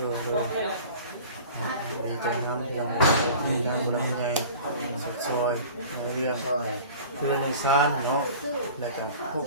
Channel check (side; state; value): both; inverted; correlation -0.42